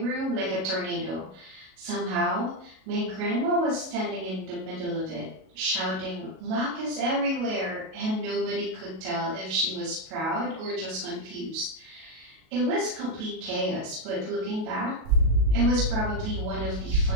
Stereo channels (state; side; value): late; left; 37 ms